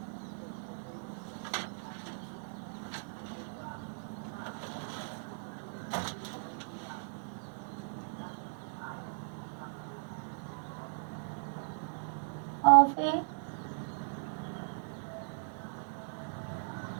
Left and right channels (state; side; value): silent; left; digital silence